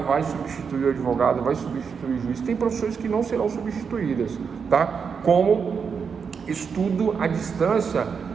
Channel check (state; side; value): quieter; left; 6.1 dB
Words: substituir o advogado, vai substituir o juiz. Tem profissões que não serão substituídas, tá? Como estudo à distância,